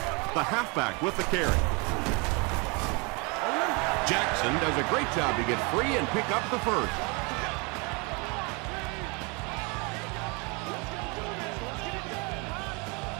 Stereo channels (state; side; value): quieter; left; 30.3 dB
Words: The halfback with the carry. Jackson does a great job to get free and pick up the first.